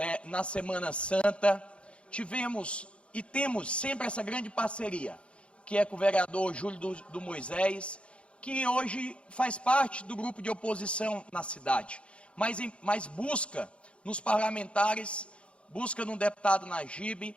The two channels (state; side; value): late; right; 0.059 ms